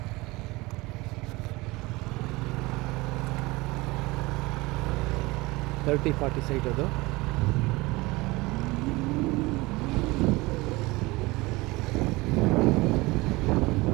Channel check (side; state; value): left; quieter; 22.2 dB